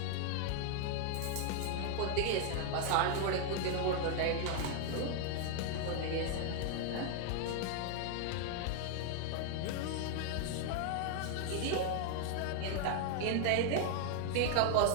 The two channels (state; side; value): different; both; correlation 0.00